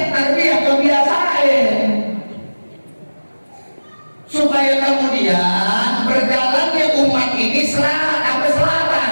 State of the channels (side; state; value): both; inverted; correlation -1.00